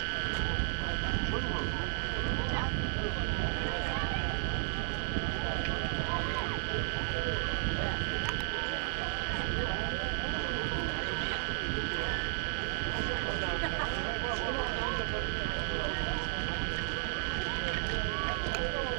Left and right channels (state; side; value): silent; left; digital silence